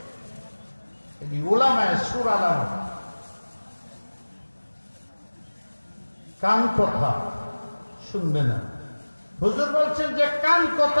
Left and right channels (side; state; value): both; inverted; correlation -1.00